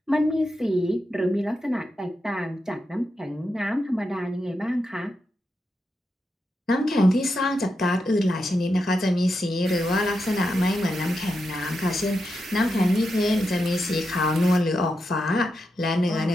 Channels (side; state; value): both; normal; correlation 0.86